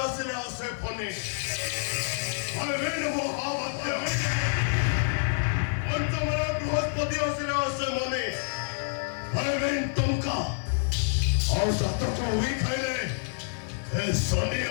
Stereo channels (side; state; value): right; silent; digital silence